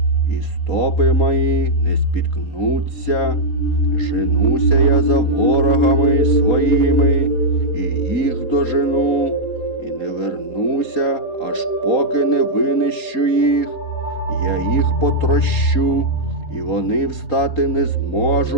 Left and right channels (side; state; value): right; late; 4.2 ms